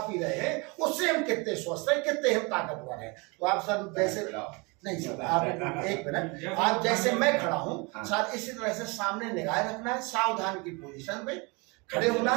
पी रहे हैं उससे हम कितने स्वस्थ हैं, कितने हम ताकतवर हैं। तो आप सर वैसे नहीं सर, आप एक मिनट, आप जैसे मैं खड़ा हूँ सर इसी तरह से सामने निगाह रखना है, सावधान की पोजीशन पे खड़े होना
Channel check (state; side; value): quieter; left; 28.5 dB